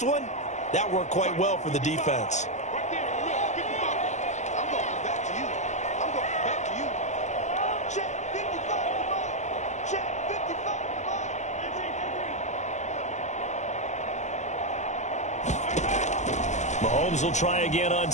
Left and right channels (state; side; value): late; right; 0.34 ms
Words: one, that worked quite well for the defense. Mahomes will try again on